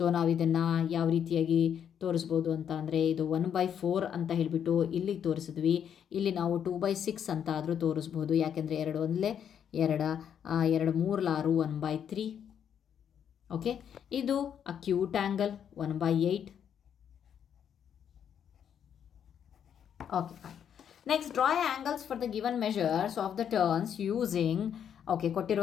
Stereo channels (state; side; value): quieter; right; 8.6 dB